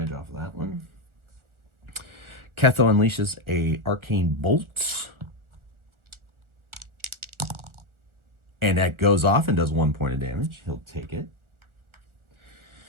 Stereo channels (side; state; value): left; late; 1.4 ms